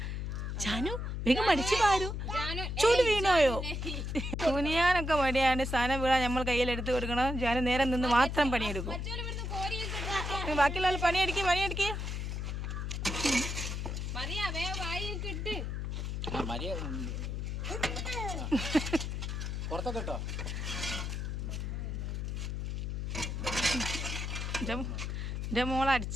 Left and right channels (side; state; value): left; noise; hum, 3 dB below the sound